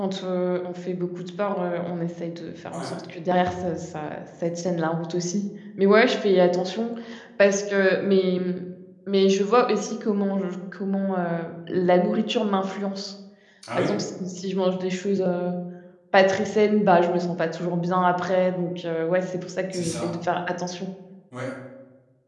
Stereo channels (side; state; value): both; identical; correlation 1.00